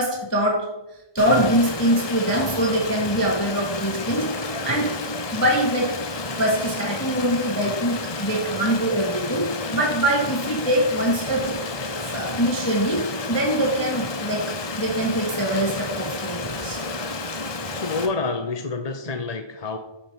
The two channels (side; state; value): right; late; 1.2 ms